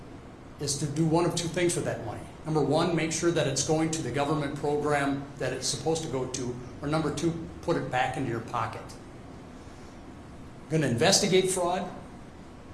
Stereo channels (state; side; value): identical; both; correlation 1.00